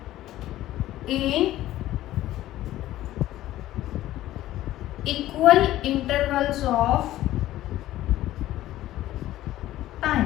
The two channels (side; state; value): right; quieter; 14.6 dB